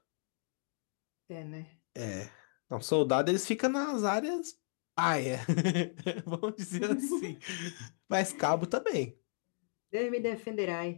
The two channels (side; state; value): right; silent; 55 dB below the other